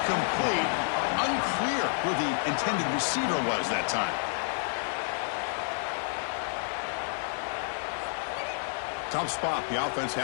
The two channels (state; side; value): silent; right; 58 dB below the other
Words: Unclear who the intended receiver was that time. Tough spot. The offense